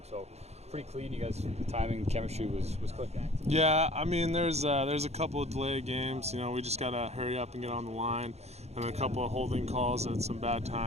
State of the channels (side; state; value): left; late; 0.31 ms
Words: so pretty clean. You guys, the timing, chemistry was clicking. Yeah, I mean, there's a couple of delayed games. We just gotta hurry up and get on the line, and a couple of holding calls at some bad